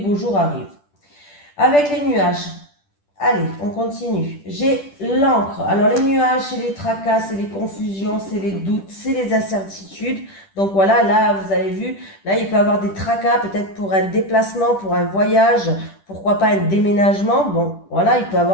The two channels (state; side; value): late; right; 10 ms